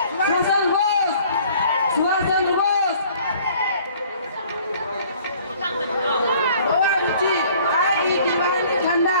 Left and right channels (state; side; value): inverted; both; correlation -0.55